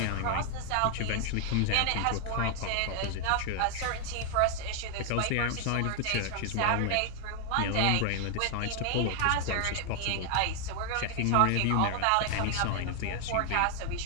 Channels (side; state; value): both; different; correlation 0.00